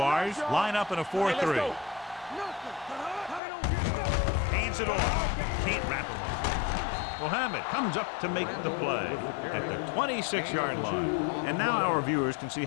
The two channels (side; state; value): right; drops out; at 3.4 s